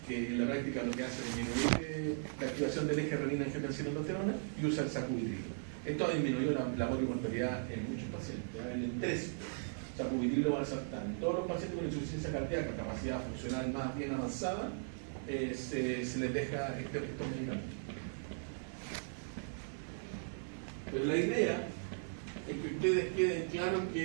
que en la práctica lo que hace es disminuir la activación del eje renina-angiotensina-aldosterona, y usa el sacubitrilo. Esto ha disminuido la morbimortalidad en muchos pacientes. En el 3, sacubitrilo valsartán. Todos los pacientes con insuficiencia cardíaca, capacidad funcional más bien avanzada, se les deja estos medicamentos. Pero la idea es que ustedes queden claros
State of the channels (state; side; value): silent; left; 53 dB below the other